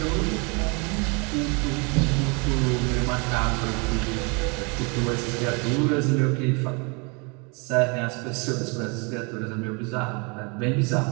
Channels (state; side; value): quieter; left; 31.6 dB